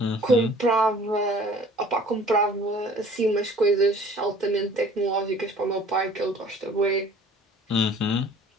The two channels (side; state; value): both; normal; correlation 0.50